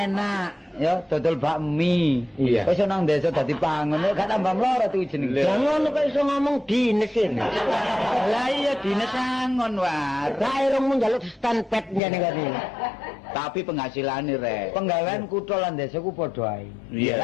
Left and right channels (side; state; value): right; drops out; at 12.0 s